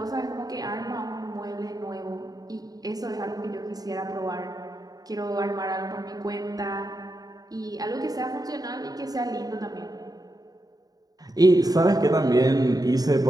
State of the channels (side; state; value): left; late; 0.18 ms